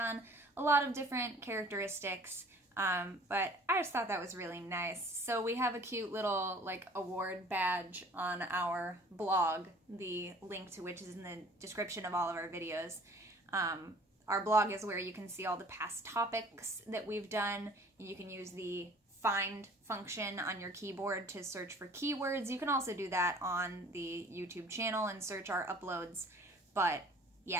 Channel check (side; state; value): both; normal; correlation 0.50